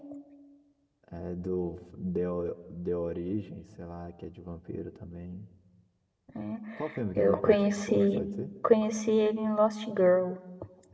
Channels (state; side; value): identical; both; correlation 1.00